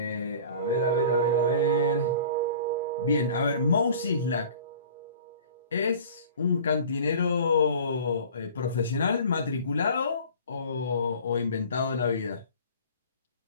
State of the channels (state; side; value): inverted; both; correlation -0.44